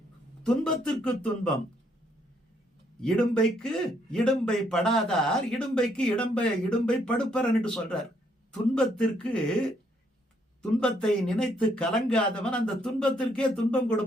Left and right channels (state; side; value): normal; both; correlation 0.71